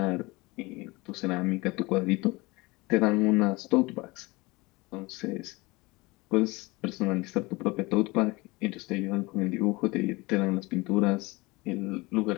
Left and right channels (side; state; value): right; quieter; 23.3 dB